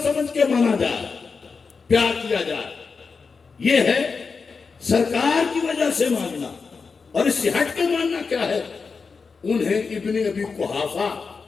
سمجھ کے مانا جائے، پیار کیا جائے، یہ ہے سرکار کی وجہ سے ماننا۔ اور اس سے ہٹ کے ماننا کیا ہے؟ انہیں ابن ابی قحافہ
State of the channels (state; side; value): quieter; right; 5.0 dB